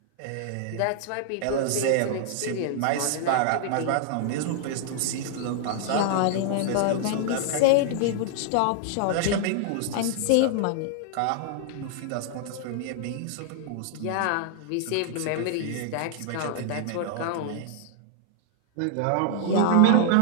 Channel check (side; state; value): both; different; correlation -0.01